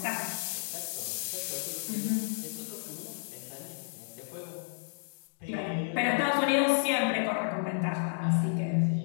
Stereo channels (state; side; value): silent; right; digital silence